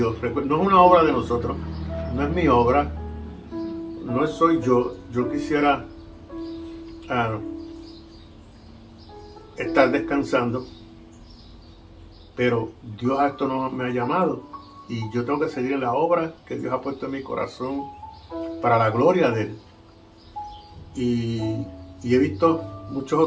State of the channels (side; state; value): both; identical; correlation 1.00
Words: No es una obra de nosotros, no es mi obra, no soy yo. Yo quisiera estar descansando, pero Dios a esto no me ha llamado y yo tengo que seguir en la obra que Dios ha puesto en mi corazón para la gloria de Él. Y he visto muchos